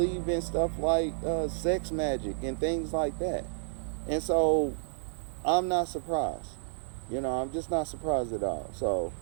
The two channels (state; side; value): silent; left; digital silence